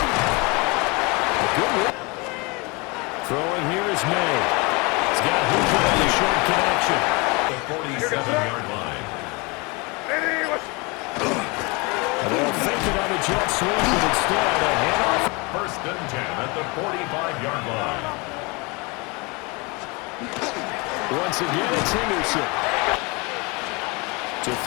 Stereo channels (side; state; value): right; quieter; 27.8 dB